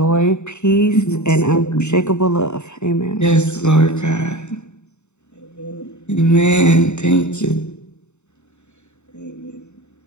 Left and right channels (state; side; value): late; right; 0.82 ms